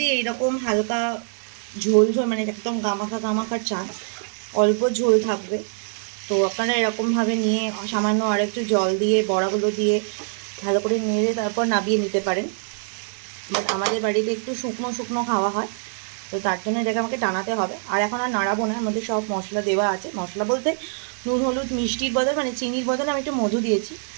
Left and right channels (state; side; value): silent; left; digital silence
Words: এইরকম হালকা ঝোল ঝোল মানে একদম গামাখা গামাখা চান, অল্প ঝোল থাকবে, তো আপনারা এরকমভাবে নিয়ে সামান্য আর একটু জল দিয়ে বড়াগুলো দিয়ে ভালো করে নেড়ে তারপর নামিয়ে নিতে পারেন। বাট আমাদের বাড়িতে একটু শুকনো শুকনো খাওয়া হয়, তো তার জন্য এটাকে আমাকে টানাতে হবে। আর এখন আর নাড়াবো না, এর মধ্যে সব মশলা দেওয়া আছে। মশলা বলতে নুন হলুদ মিষ্টির বদল মানে চিনির বদলে আমি একটু মধু দিয়েছি।